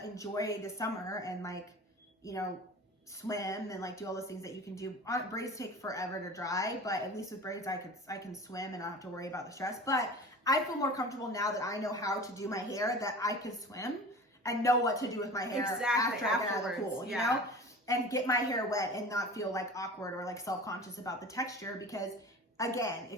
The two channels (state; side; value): normal; both; correlation 0.37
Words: enjoy the summer and like, you know, swim and like do all those things that you can do. Braids take forever to dry, but at least with braids I can swim and not have to worry about the stress. But I feel more comfortable now that I know how to do my hair, that I can swim and know what to do with my hair after I get out of the pool, you know? And get my hair wet and not feel like awkward or like self-conscious about the texture. Because again,